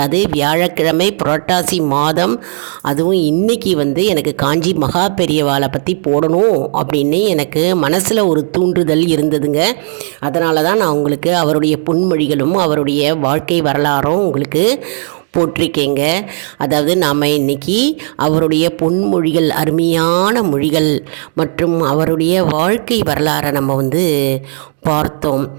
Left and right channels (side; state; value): left; silent; 55 dB below the other